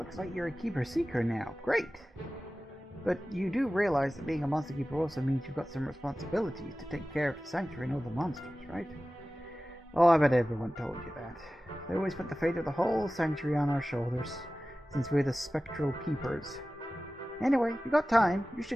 like you're a keeper seeker now. Great. But you do realize that being a monster keeper also means you've got some responsibilities to take care of the sanctuary and all the monsters, right? Oh, I bet everyone told you that. They always put the fate of the whole sanctuary on our shoulders, since we're the spectral keepers. Anyway, you got time, you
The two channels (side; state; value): both; normal; correlation 0.96